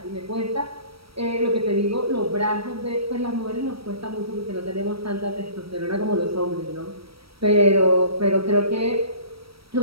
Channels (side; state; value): left; late; 0.75 ms